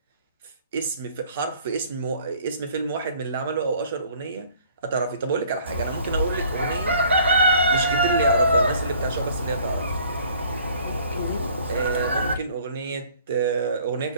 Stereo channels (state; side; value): inverted; both; correlation -0.55